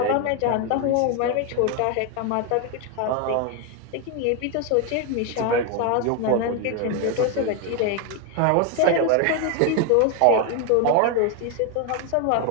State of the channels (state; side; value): different; both; correlation 0.01